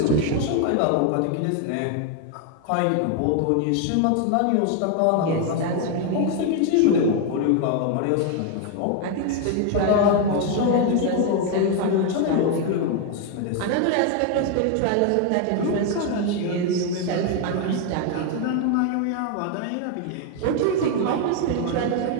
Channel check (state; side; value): different; both; correlation 0.01